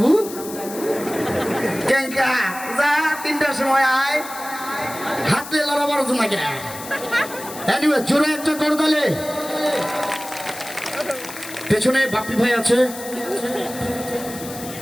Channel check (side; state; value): left; noise; hiss, 12 dB below the sound